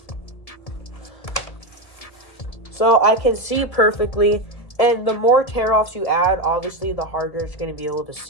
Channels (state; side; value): late; right; 1.7 ms